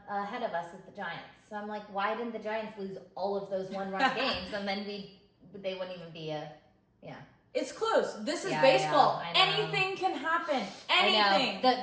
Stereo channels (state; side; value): identical; both; correlation 1.00